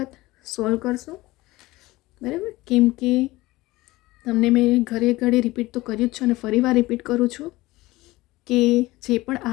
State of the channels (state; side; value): quieter; right; 19.4 dB